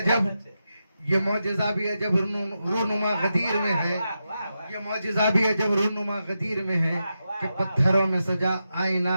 ये मौजिज़ा भी अजब रूनुमा गदीर में है। ये मौजिज़ा भी अजब रूनुमा गदीर में है कि पत्थरों में सजा आईना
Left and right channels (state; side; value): inverted; both; correlation -0.88